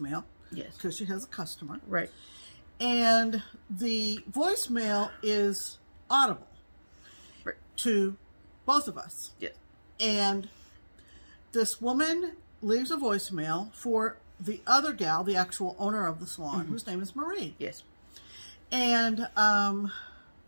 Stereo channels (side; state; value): both; inverted; correlation -1.00